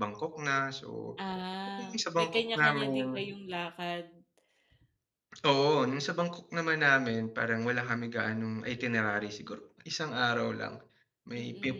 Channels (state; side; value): identical; both; correlation 1.00